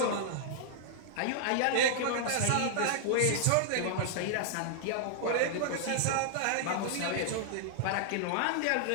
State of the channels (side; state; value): both; different; correlation -0.01